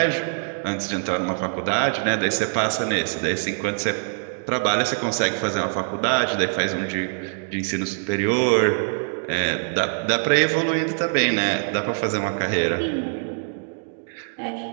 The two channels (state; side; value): silent; left; 63 dB below the other